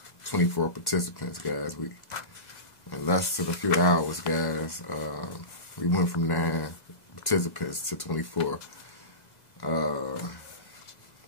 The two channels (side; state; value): right; late; 2.0 ms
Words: 24 participants, guys. In less than a few hours, guys, we went from 9 participants to 24.